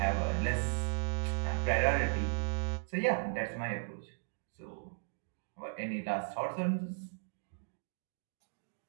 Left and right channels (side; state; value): left; silent; digital silence